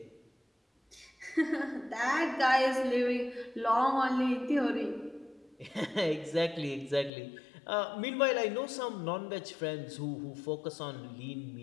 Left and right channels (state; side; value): drops out; right; at 7.1 s